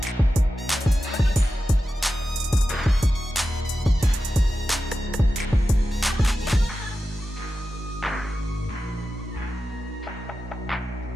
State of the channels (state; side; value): normal; both; correlation 0.92